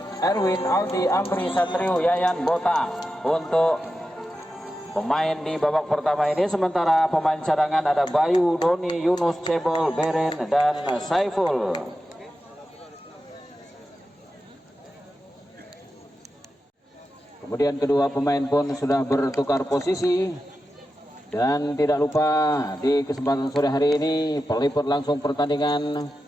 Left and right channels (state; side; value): normal; both; correlation 0.91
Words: Erwin, Aldi, Amri, Satrio, Yayan, Bota untuk pemain di babak pertama ini. Sementara pemain cadangan ada Bayu, Doni, Yunus, Cebol, Beren, dan Saiful. Kemudian kedua pemain pun sudah bertukar posisi. Dan tidak lupa di kesempatan sore hari ini peliput langsung pertandingan